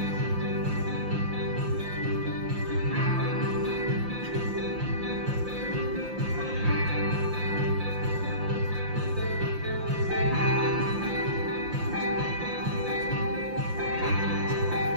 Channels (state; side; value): late; left; 5.7 ms